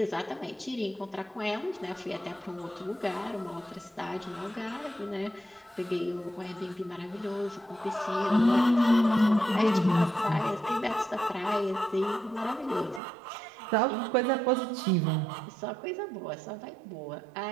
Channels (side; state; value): left; drops out; at 13.0 s